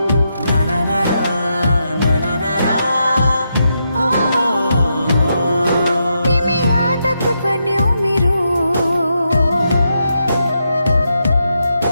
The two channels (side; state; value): both; inverted; correlation -0.83